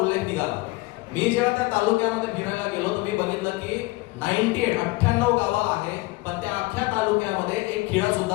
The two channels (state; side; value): quieter; right; 22.3 dB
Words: निघाला. मी जेव्हा त्या तालुक्यामध्ये फिरायला गेलो तर मी बघितलं की 98 गावं आहे, पण त्या अख्ख्या तालुक्यामध्ये एक खिळा सुद्धा